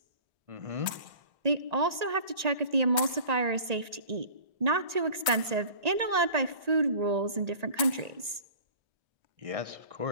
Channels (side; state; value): left; late; 1.8 ms